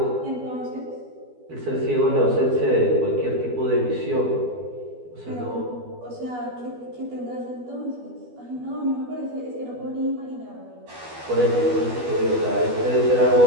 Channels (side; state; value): left; late; 12 ms